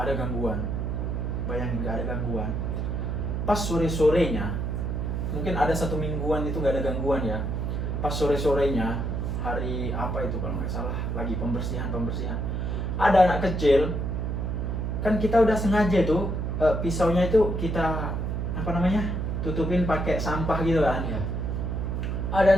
ada gangguan, bayangin nggak ada gangguan. Pas sore-sorenya, mungkin ada 1 mingguan itu nggak ada gangguan ya. Pas sore-sorenya, hari apa itu kalau nggak salah, lagi pembersihan, ada anak kecil, kan kita udah sengaja tuh pisaunya itu kita tutupin pakai sampah gitu kan. Iya. Ada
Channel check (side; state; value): right; noise; hum, 1 dB below the sound